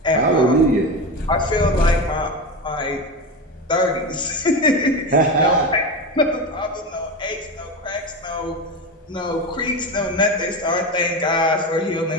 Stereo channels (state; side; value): normal; both; correlation 0.21